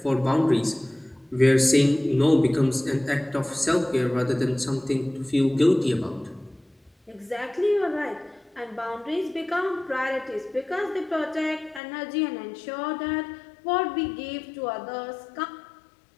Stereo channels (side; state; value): right; drops out; at 11.8 s